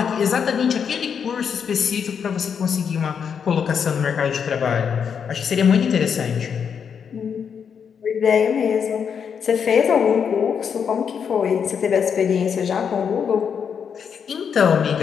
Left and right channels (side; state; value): right; quieter; 7.1 dB